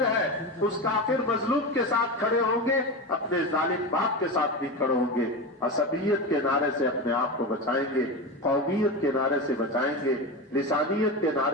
ہے، اس کافر مظلوم کے ساتھ کھڑے ہوں گے، اپنے ظالم باپ کے ساتھ بھی کھڑے ہوں گے، عصبیت کے نعرے سے اپنے آپ کو بچائیں گے، قومیت کے نعرے سے بچائیں گے، لسانیت کے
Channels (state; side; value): normal; both; correlation 0.21